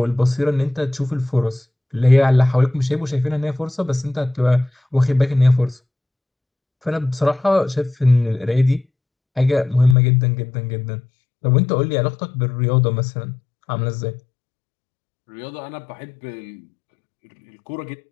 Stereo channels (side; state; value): right; drops out; at 10.0 s